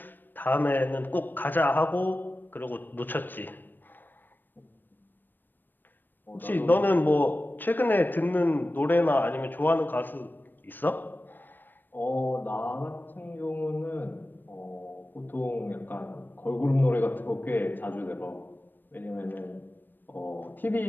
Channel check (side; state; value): right; late; 0.093 ms